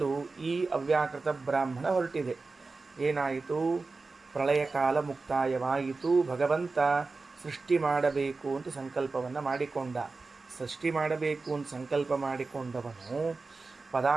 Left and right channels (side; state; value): left; quieter; 3.9 dB